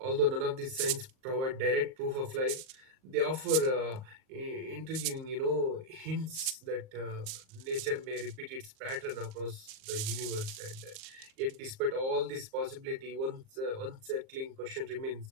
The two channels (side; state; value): left; late; 38 ms